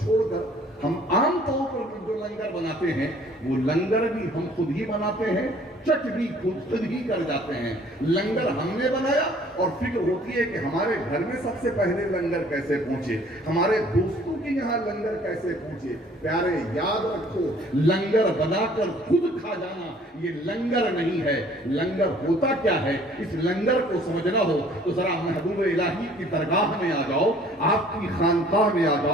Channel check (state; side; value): normal; both; correlation 0.56